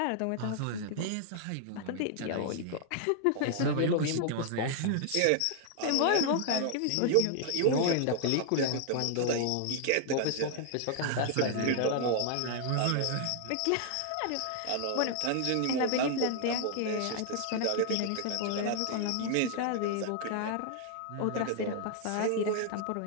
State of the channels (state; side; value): different; both; correlation 0.00